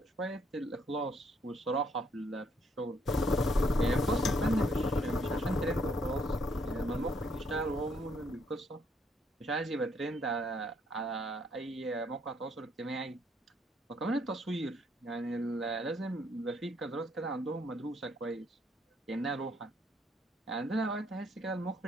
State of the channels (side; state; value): both; normal; correlation 0.69